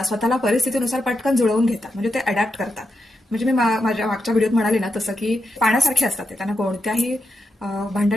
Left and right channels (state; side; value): normal; both; correlation 0.85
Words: स्वतःला परिस्थितीनुसार पटकन जुळवून घेतात. म्हणजे ते अडॅप्ट करतात. म्हणजे मी माझ्या मागच्या व्हिडिओत म्हणाले ना तसं, की पाण्यासारखे असतात ते. त्यांना कोणत्याही